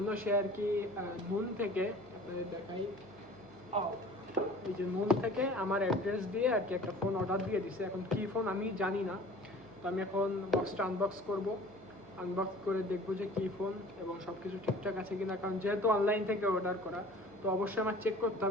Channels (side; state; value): left; noise; hum, 28 dB below the sound